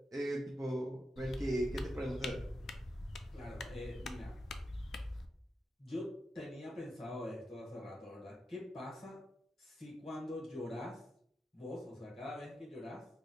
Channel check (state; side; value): normal; both; correlation 0.88